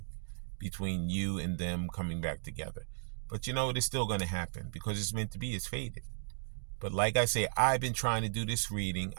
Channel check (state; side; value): silent; left; digital silence